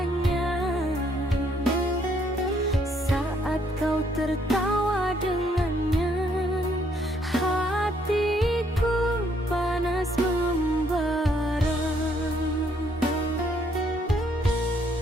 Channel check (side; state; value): both; normal; correlation 0.69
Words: saat kau tertawa dengannya. Hatiku panas membara.